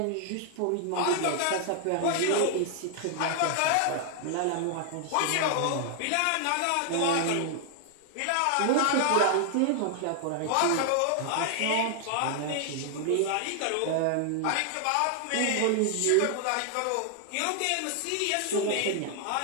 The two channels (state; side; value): different; both; correlation 0.00